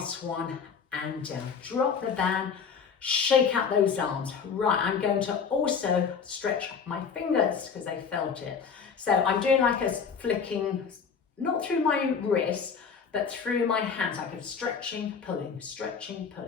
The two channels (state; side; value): quieter; right; 6.2 dB